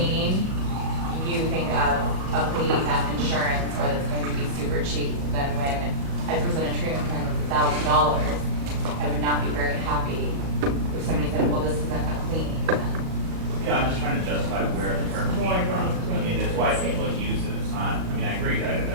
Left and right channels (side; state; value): left; late; 37 ms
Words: you think of a cleaning that's insurance or that's going to be super cheap. But then when I present a treatment plan with $1,000, I would not be very happy if somebody said, well, this isn't a cleaning. Yeah, I'm just trying to justify where the term came from. I mean, it's why people use it. It's not, I mean, I agree, I